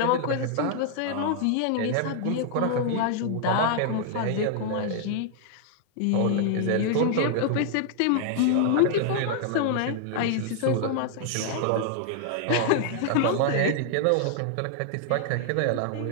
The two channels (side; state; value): both; different; correlation 0.00